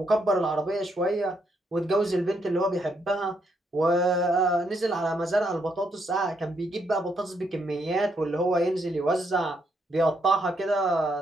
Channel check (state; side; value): normal; both; correlation 0.76